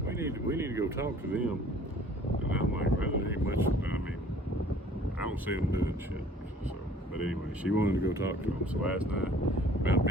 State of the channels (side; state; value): both; normal; correlation 0.52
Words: We need to go talk to them." And I'm like, "Well, there ain't much. I mean, I don't see them doing shit." So, but anyway, she wanted to go talk to them. So last night, about